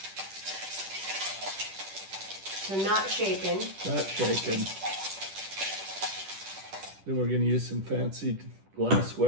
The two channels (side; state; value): left; late; 10 ms